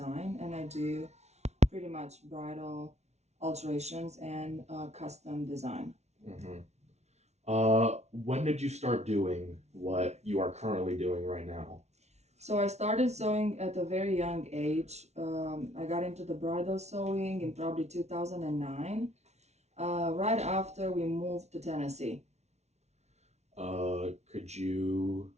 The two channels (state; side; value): late; left; 0.32 ms